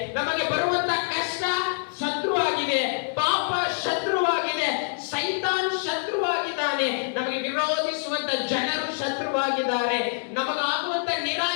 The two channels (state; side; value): silent; right; digital silence